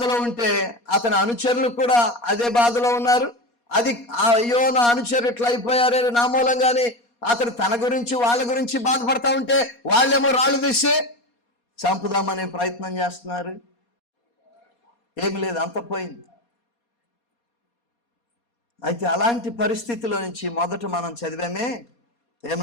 ఉంటే అతని అనుచరులు కూడా అదే బాధలో ఉన్నారు. అది అయ్యో నా అనుచరులు ఇట్లా అయిపోయారే నా మూలంగానే అతడు తన గురించి వాళ్ళ గురించి బాధపడతా ఉంటే వాళ్ళేమో రాళ్ళు తీసి చంపుదామనే ప్రయత్నం చేస్తున్నారు. ఏమి లేదు, అంత పోయింది. అయితే అలాంటి పరిస్థితిలో నుంచి మొదట మనం చదివామే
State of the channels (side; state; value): right; late; 4.2 ms